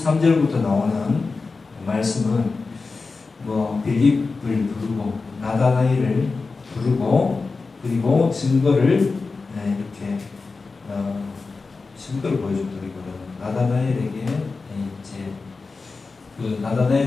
나오는 말씀은 빌립을 부르고 나다나엘을 부르고 그리고 증거를 이렇게 증거를 보여줬더라고요. 나다나엘에게 이제 그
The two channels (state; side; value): quieter; right; 4.1 dB